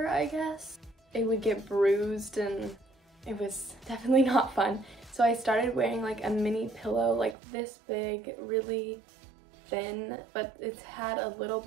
I guess. It would get bruised and it was definitely not fun. So I started wearing a mini pillow this big, really thin, but it's had a little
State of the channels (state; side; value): drops out; left; at 7.4 s